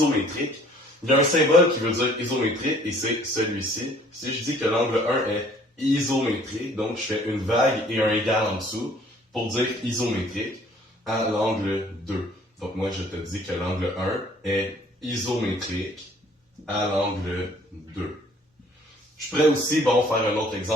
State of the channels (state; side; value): normal; both; correlation 0.57